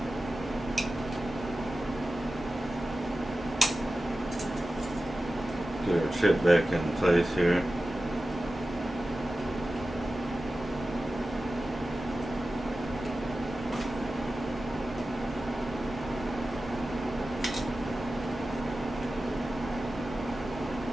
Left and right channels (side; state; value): both; normal; correlation 0.94